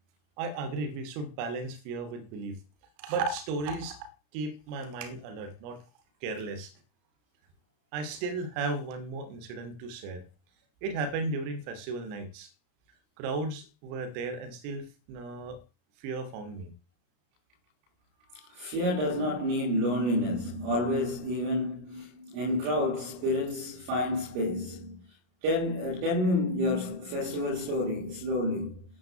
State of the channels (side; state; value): left; late; 33 ms